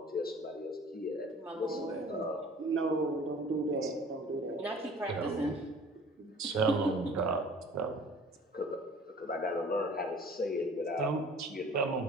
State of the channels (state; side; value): normal; both; correlation 0.48